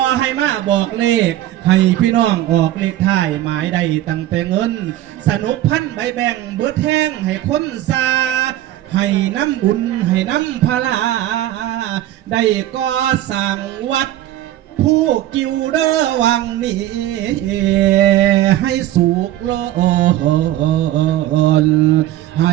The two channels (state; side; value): quieter; left; 13.7 dB